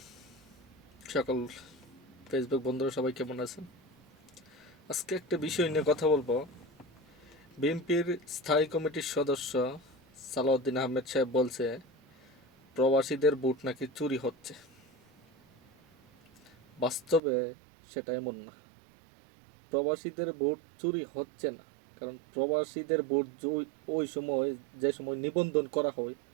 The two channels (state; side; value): drops out; left; at 17.2 s